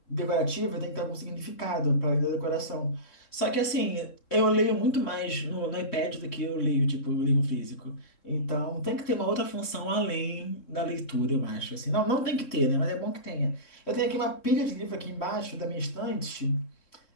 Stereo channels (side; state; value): right; late; 3.7 ms